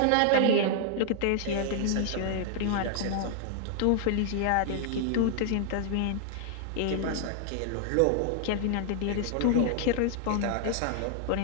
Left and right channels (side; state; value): both; different; correlation 0.00